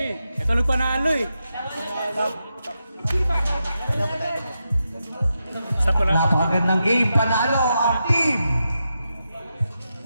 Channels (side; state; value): both; inverted; correlation -0.87